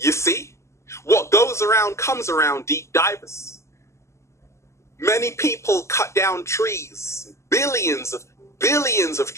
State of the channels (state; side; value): late; right; 0.13 ms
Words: see? What goes around comes around, deep divers. Many people cut down trees, billions of